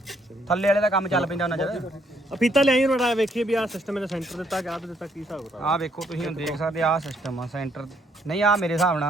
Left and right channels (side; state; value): both; normal; correlation 0.70